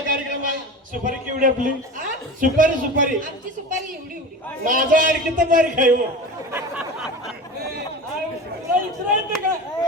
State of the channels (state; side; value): normal; both; correlation 0.31